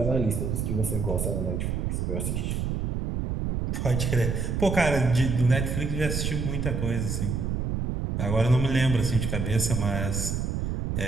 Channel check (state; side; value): noise; right; rumble, 1 dB below the sound